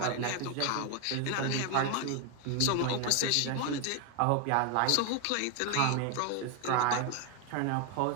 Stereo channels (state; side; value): different; both; correlation 0.01